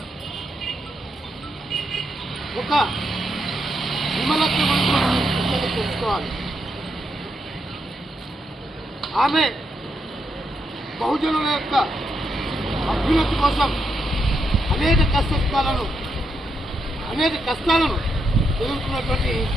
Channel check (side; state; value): both; normal; correlation 0.81